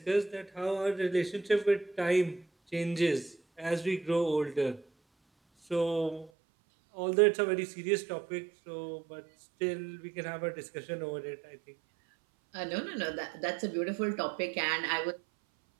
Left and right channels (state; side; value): drops out; left; at 6.3 s